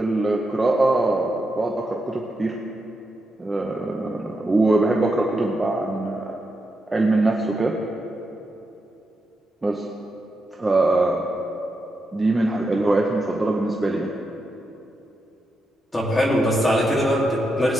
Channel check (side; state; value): both; normal; correlation 0.85